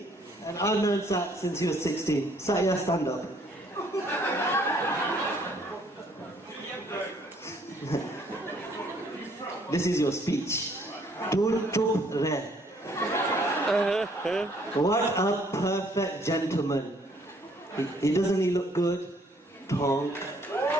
and I've known Sat since he was 16. Sat, yeah, stand up. This is your speech. Dur chup re. What a perfect gentleman. He doesn't he look good? Tonk.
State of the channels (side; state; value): both; normal; correlation 0.64